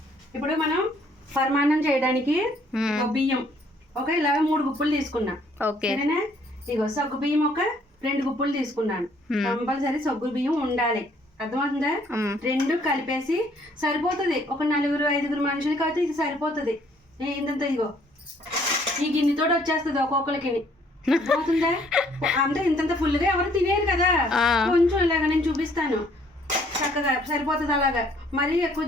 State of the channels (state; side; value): normal; both; correlation 0.63